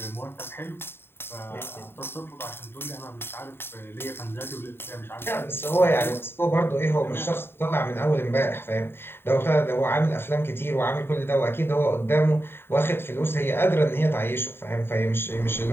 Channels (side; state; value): right; late; 0.11 ms